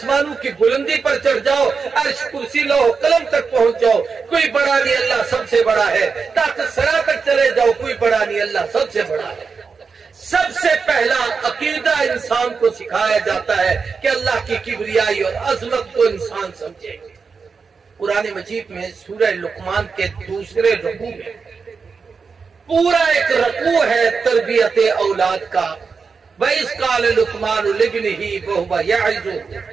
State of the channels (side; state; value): left; quieter; 5.2 dB